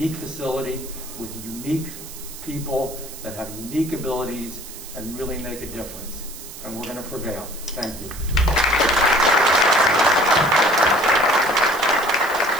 facility with unique people that have unique abilities and really make a difference. And we're going to prevail. Thank you.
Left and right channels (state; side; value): noise; right; hiss, 14 dB below the sound